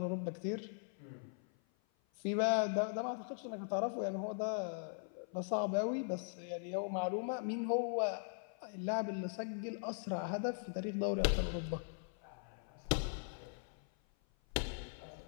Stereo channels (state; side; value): silent; right; 51 dB below the other